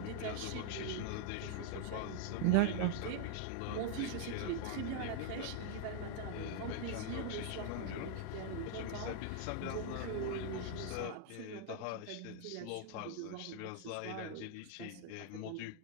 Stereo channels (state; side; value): different; both; correlation 0.00